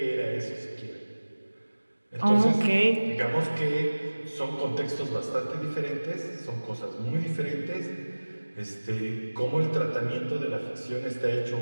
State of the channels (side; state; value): both; inverted; correlation -1.00